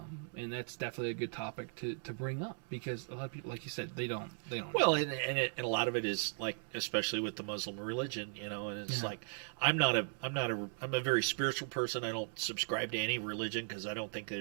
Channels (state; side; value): silent; left; 53 dB below the other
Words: and that's definitely a good topic to bring up because a lot of people, like you said, they don't. Well, and a lot of it is like, especially with the Muslim religion, and it's like I'm a very spiritual person. I don't subscribe to any religion because I don't think